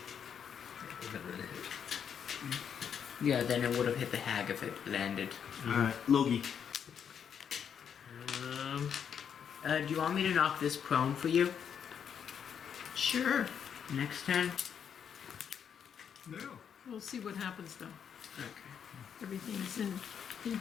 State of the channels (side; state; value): right; quieter; 7.8 dB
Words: Yeah, then it would have hit the hag if it landed. Alright, Logi. Do you want me to knock this prone for you? Sure. Next turn? No. We'll see what happens though. Okay. Everything's in